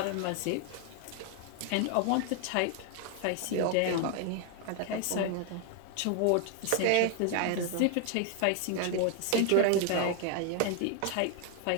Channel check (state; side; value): different; both; correlation 0.01